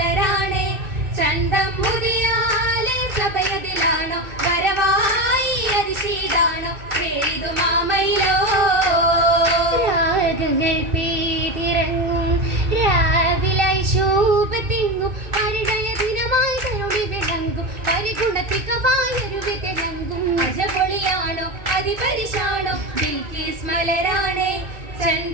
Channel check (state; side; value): late; left; 2.6 ms